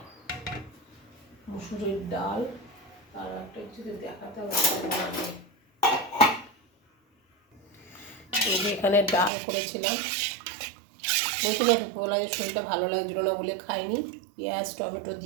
মুসুরির ডাল। আর একটা যদি দেখাতে হবে, এখানে ডাল করেছিলাম। বলছিলাম দুপুরবেলা যে শরীরটা ভালো লাগছিল না বলে খাইনি। পেঁয়াজ টমেটো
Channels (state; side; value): drops out; left; at 9.3 s